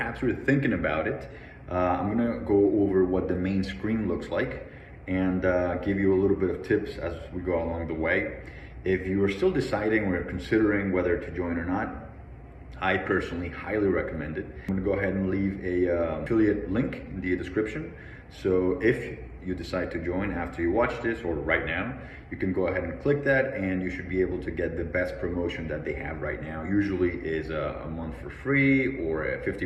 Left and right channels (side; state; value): both; identical; correlation 1.00